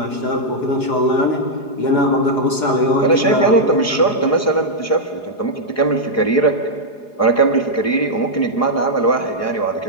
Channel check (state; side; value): late; right; 4.8 ms